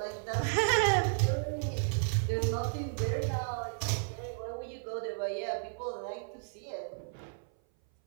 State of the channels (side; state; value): left; silent; 56 dB below the other